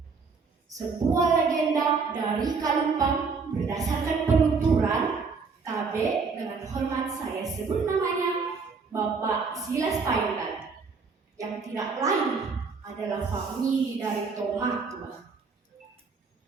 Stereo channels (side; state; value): left; quieter; 4.9 dB